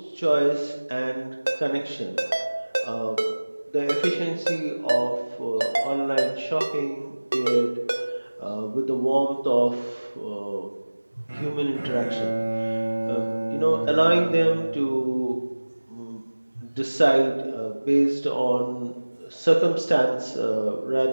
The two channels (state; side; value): inverted; both; correlation -1.00